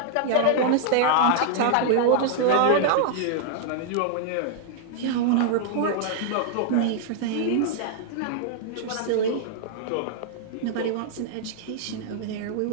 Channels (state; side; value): different; both; correlation -0.01